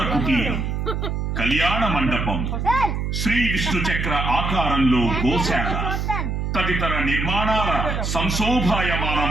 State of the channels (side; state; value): right; noise; hum, 2 dB below the sound